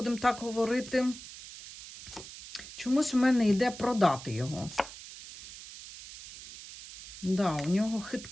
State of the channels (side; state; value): right; noise; hiss, 14 dB below the sound